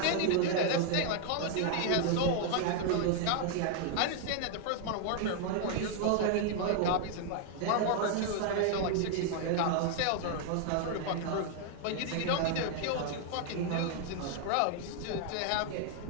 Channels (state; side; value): different; both; correlation 0.00